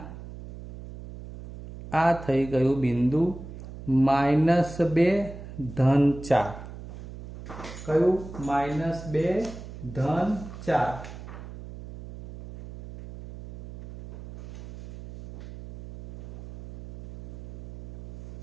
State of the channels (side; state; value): right; noise; hum, 13 dB below the sound